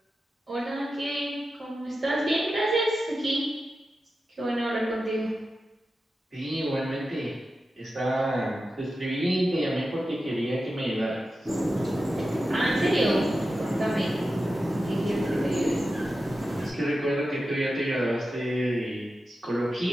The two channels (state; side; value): normal; both; correlation 0.92